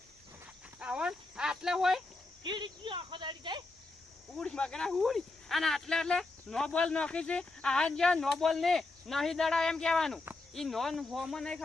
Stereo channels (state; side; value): quieter; right; 3.2 dB